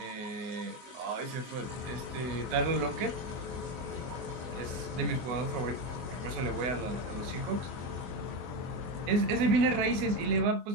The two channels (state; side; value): late; left; 24 ms